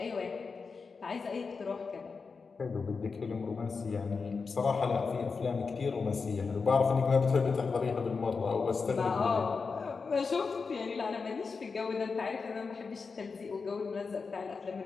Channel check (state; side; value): quieter; right; 4.9 dB